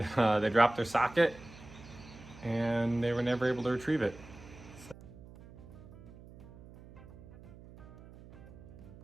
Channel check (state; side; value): noise; right; hum, 18 dB below the sound